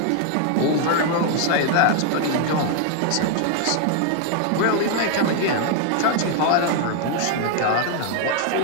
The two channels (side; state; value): both; different; correlation 0.00